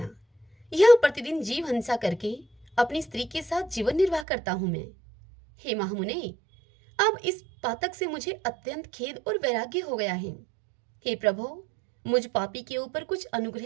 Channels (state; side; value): drops out; left; at 4.2 s